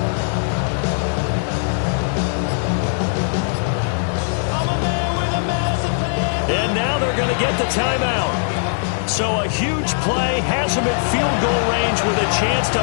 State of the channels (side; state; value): right; silent; digital silence